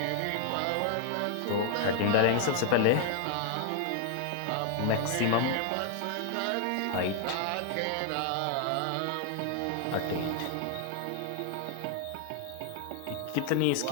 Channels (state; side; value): different; both; correlation 0.00